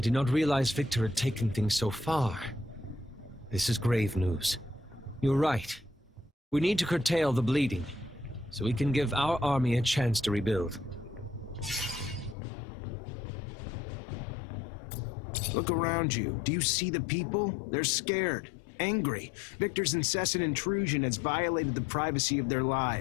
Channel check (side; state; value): right; drops out; at 12.4 s